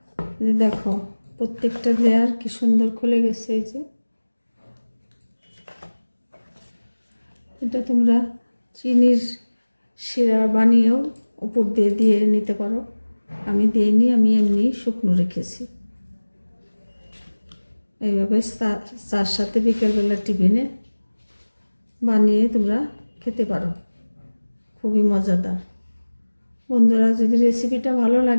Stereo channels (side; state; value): both; inverted; correlation -1.00